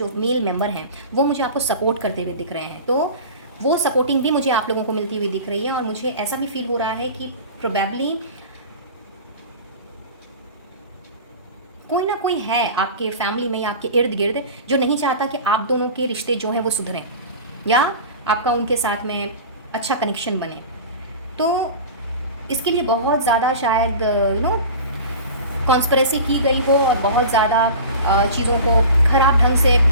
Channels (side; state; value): both; inverted; correlation -0.35